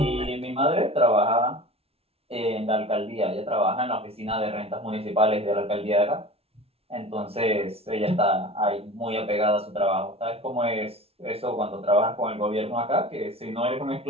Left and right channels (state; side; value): late; left; 0.29 ms